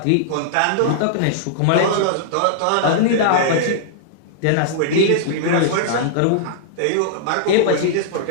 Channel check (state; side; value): different; both; correlation -0.01